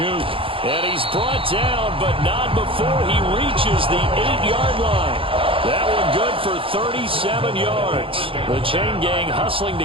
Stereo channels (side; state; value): left; late; 0.26 ms